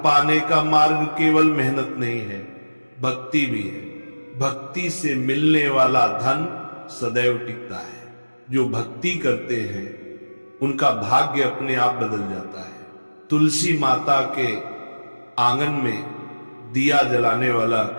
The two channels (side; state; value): both; inverted; correlation -1.00